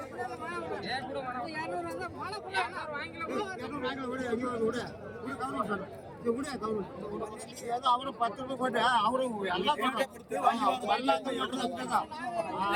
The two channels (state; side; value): identical; both; correlation 1.00